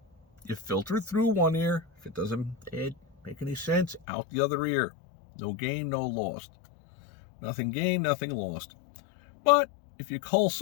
you filter through one ear. If it doesn't make any sense, out the other ear. No gain, no lost. Nothing gained, nothing lost. But if you cull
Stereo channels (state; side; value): drops out; right; at 4.0 s